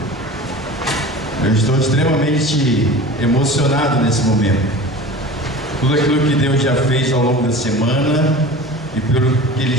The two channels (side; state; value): both; normal; correlation 0.37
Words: Eu estou extremamente emocionado nesse momento. Tudo aquilo que Deus já fez ao longo da semana e pelo que Ele